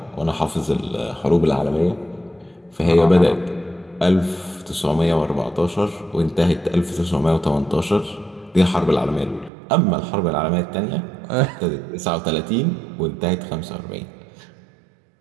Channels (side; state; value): left; drops out; at 9.5 s